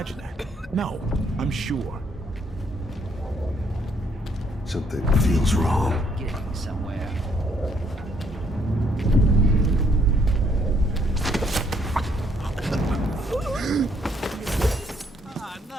that? No, I'm sure. Something feels wrong. Getting somewhere.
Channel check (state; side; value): normal; both; correlation 0.69